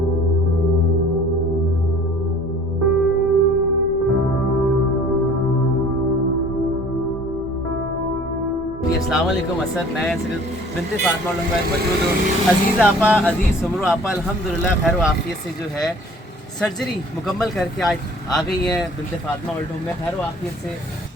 अस्सलाम वालेकुम असद, मैं सिर्फ बिन्ते फातिमा ओल्ड होम में मौजूद हूँ। अजीज़ आपा, अजीज़ सुमरो आपा अल्हम्दुलिल्लाह खैर आफियत से जो है सर्जरी मुकम्मल करके आज आ गई हैं बिन्ते फातिमा ओल्ड होम में खैर आफियत से।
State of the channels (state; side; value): normal; both; correlation 0.50